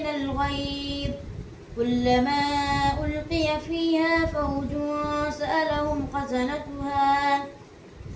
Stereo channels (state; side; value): identical; both; correlation 1.00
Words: الغيظ كلما ألقي فيها فوج سألهم خزنتها